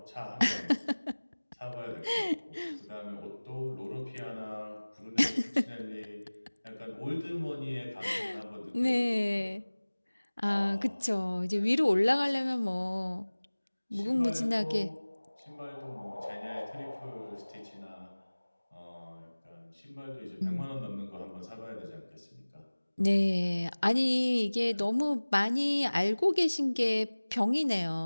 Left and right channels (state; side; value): inverted; both; correlation -1.00